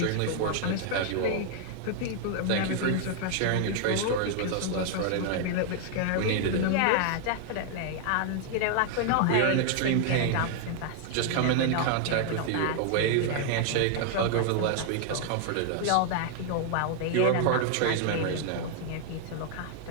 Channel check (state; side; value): different; both; correlation 0.00